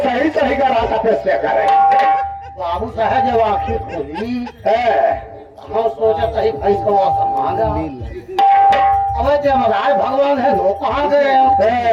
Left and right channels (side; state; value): both; identical; correlation 1.00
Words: सही सही का रास्ता प्रश्न करें। बाबू साहब जब आखिर खोली है हम सोचा सही भाई को मांगा अब जमराज भगवान है वो कहाँ गए